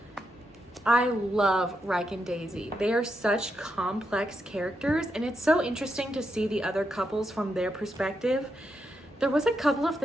I love Ryke and Daisy. They are such complex characters, and it's so interesting to see the other couples from their perspective. There was a couple of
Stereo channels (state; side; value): normal; both; correlation 0.83